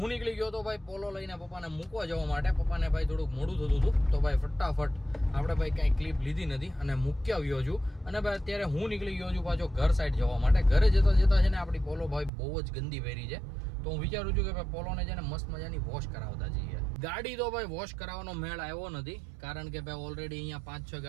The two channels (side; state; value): left; drops out; at 12.3 s